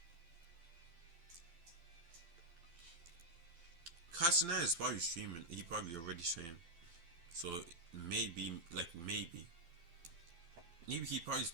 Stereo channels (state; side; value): late; left; 12 ms